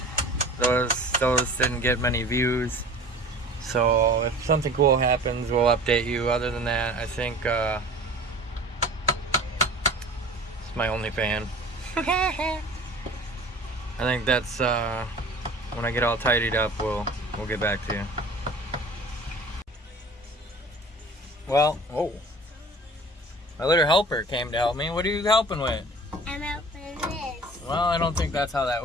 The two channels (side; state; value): both; normal; correlation 0.43